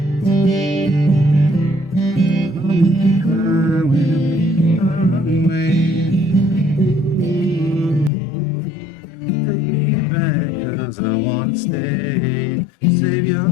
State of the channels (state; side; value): drops out; right; at 8.1 s